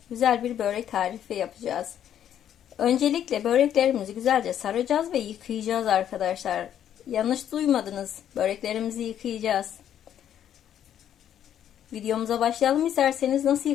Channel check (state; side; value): quieter; right; 10.1 dB